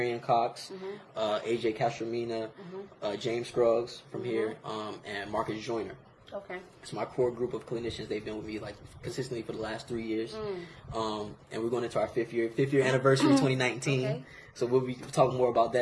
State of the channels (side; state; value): both; identical; correlation 1.00